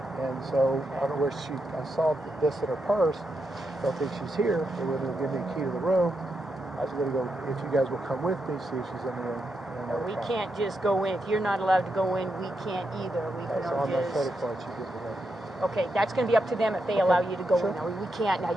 And so I don't know where I saw this in her purse. Don't think she's here. They were going to give me a key to the room. I was going to go, if you guys will come with me, see if she's in the room. We can't just go in. If you're not allowed to go in, we can't either. We can That's on my just. credit card. She gives me. Okay, that's going to be up to them if they allow you to go Sure. in. Now, we can't. Now,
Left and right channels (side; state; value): both; normal; correlation 0.84